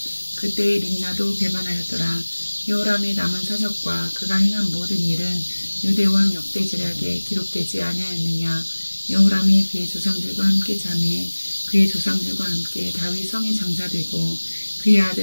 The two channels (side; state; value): both; inverted; correlation -1.00